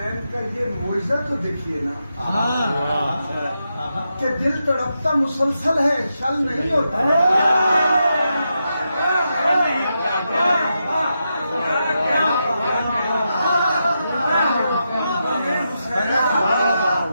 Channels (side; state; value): both; inverted; correlation -0.86